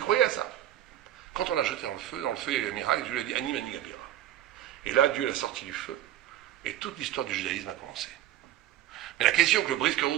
croyait à ça. Quand on l'a jeté dans le feu, il y a eu un miracle, Dieu lui a dit, Ani mani gabira. Et là, Dieu l'a sorti du feu. Et toute l'histoire du judaïsme a commencé. Mais la question que le Brisker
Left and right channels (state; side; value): quieter; left; 12.6 dB